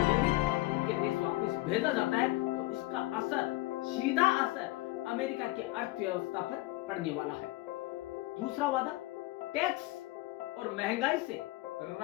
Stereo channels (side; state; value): right; quieter; 19.6 dB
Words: यदि उनके देश वापस भेजा जाता है तो इसका असर, सीधा असर अमेरिका की अर्थव्यवस्था पर पड़ने वाला है। दूसरा वादा टैक्स और महंगाई से